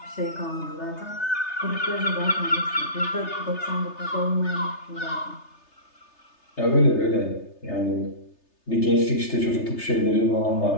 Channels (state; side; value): late; right; 3.3 ms